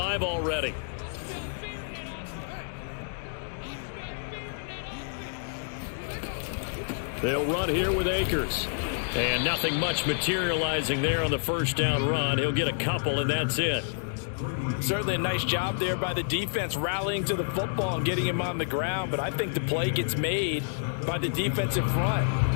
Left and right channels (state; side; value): silent; right; digital silence